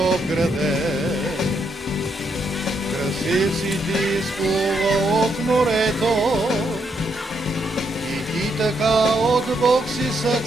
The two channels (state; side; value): normal; both; correlation 0.77